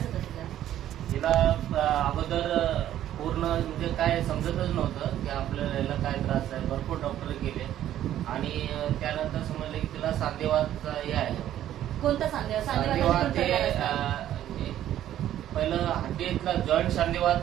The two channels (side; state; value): left; quieter; 12.0 dB